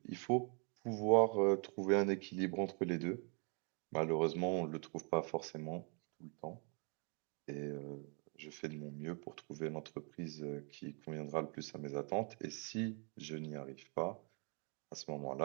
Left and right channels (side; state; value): left; quieter; 37.0 dB